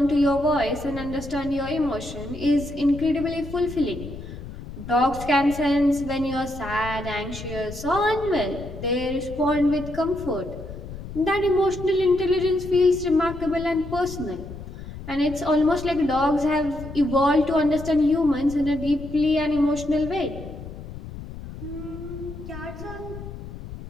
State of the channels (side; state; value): left; noise; rumble, 12 dB below the sound